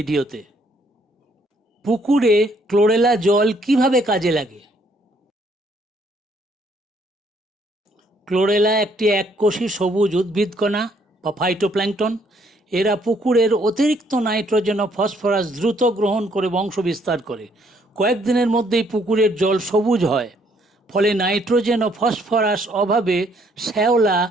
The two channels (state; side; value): normal; both; correlation 0.67